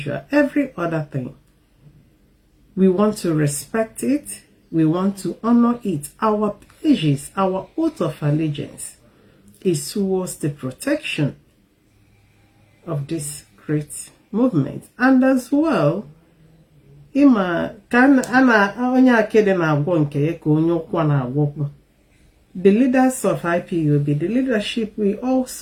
every other thing. We want to respect it. We want to honor it. Our pledges, our oath of allegiance is towards the protection of this great movement. And as well, the leaders of IPOB, the leadership, we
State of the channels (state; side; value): identical; both; correlation 1.00